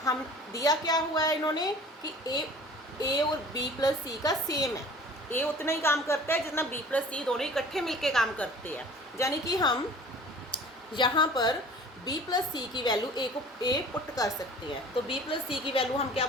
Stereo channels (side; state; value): both; normal; correlation 0.46